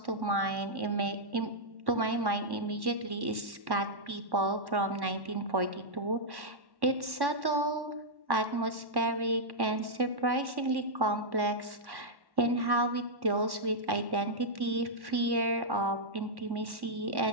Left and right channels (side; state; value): left; late; 1.1 ms